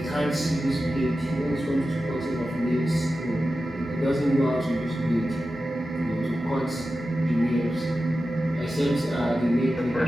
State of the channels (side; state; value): both; normal; correlation 0.93